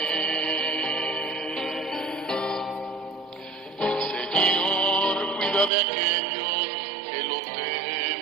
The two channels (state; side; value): drops out; left; at 5.7 s